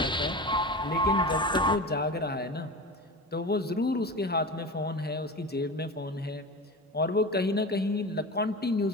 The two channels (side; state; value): both; normal; correlation 0.29